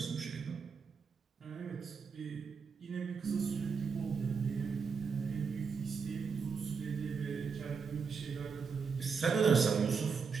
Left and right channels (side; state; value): left; quieter; 5.6 dB